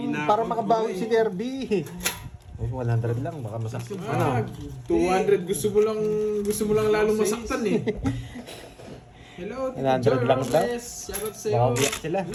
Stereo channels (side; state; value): both; identical; correlation 1.00